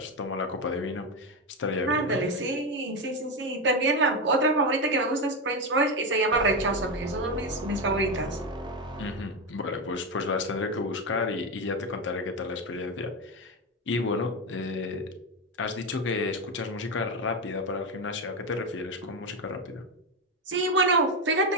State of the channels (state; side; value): normal; both; correlation 0.11